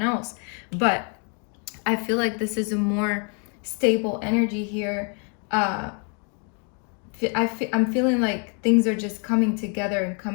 else. But I feel like this is a more stable energy here. I'm feeling like things are just coming together and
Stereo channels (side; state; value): right; quieter; 38.3 dB